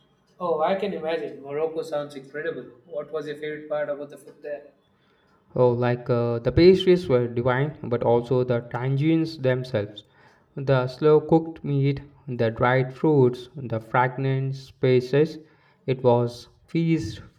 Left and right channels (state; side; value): identical; both; correlation 1.00